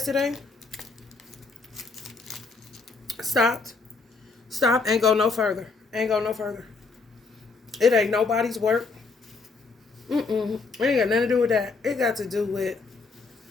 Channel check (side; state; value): right; quieter; 4.2 dB